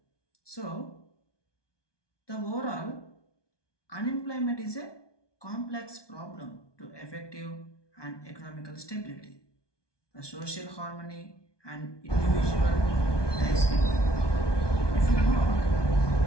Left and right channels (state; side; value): late; right; 1.2 ms